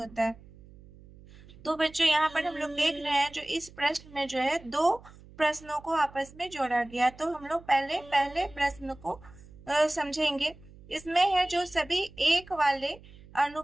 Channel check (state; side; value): noise; right; hum, 22 dB below the sound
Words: है। तो बच्चों यहाँ पर हम लोग देख रहे हैं जो इस प्रश्न में जो है 2 प्रश्नों को आपस में जोड़ा गया। तो हम लोग पहले प्रश्न को समझेंगे। इसमें है जो सभी एक वाले